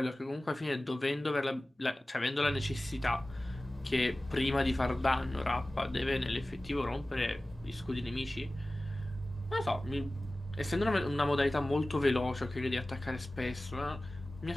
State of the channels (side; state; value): both; normal; correlation 0.97